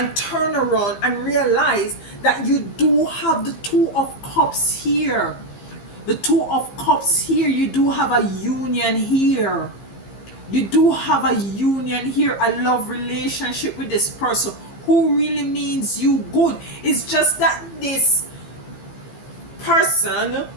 turn around and realize that you do have the 2 of Cups here. The 2 of Cups here. You do have a union here. You do have a union here, a love relationship with this person who really means you good. It's just that this person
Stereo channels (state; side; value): late; right; 15 ms